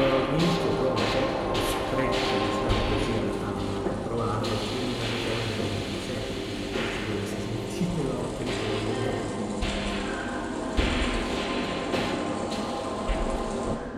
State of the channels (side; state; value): both; identical; correlation 1.00